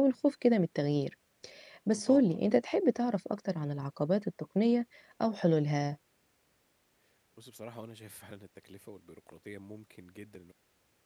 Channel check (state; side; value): identical; both; correlation 1.00